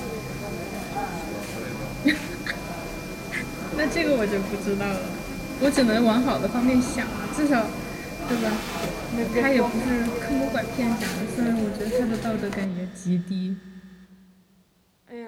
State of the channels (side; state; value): both; identical; correlation 1.00